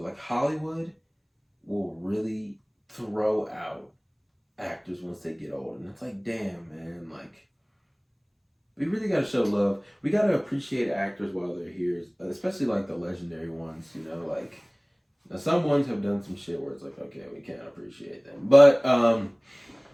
like Hollywood will really throw out actors once they get old, and it's like, damn, man, like. We really gotta show love. We gotta appreciate actors while they're here, especially like the legendary ones. You know, like now some ones have done some shit where it's like, okay, we can't appreciate them, but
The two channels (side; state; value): both; identical; correlation 1.00